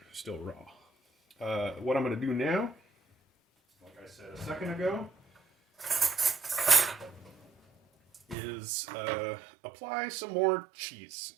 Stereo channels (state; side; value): drops out; left; at 8.3 s